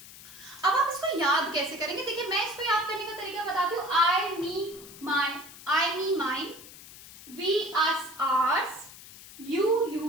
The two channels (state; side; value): noise; left; hiss, 17 dB below the sound